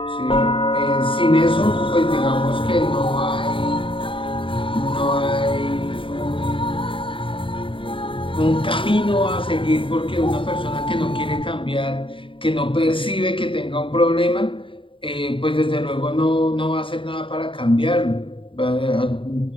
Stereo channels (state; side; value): late; right; 0.25 ms